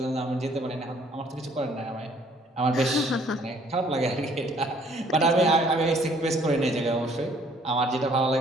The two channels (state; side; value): normal; both; correlation 0.61